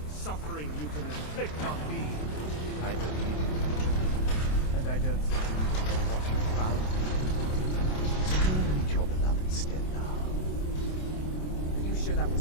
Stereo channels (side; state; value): right; late; 27 ms